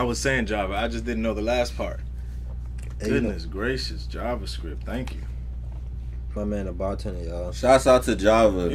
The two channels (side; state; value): both; identical; correlation 1.00